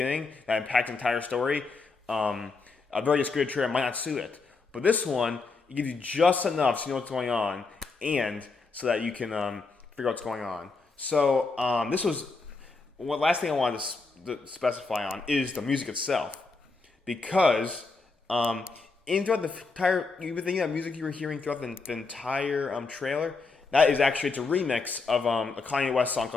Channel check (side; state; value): right; quieter; 4.1 dB